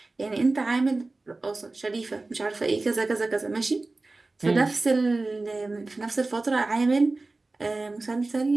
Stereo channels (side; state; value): left; quieter; 3.3 dB